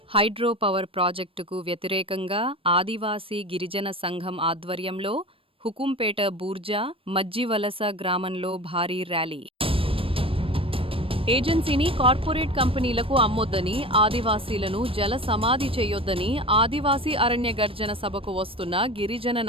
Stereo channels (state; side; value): late; left; 0.26 ms